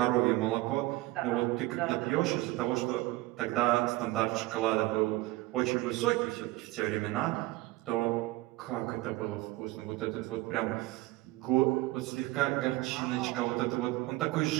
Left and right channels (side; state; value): left; quieter; 19.2 dB